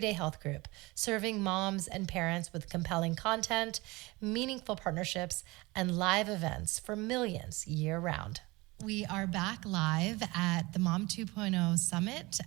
Health Group, serving moms and parents with compelling content, meaningful partnerships, and live events for millions year-round. We are back live at the Mom 2.0 Summit,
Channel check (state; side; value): quieter; left; 22.8 dB